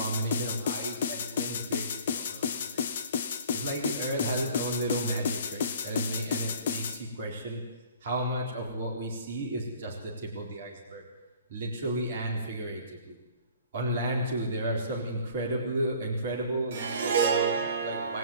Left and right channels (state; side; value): inverted; both; correlation -0.50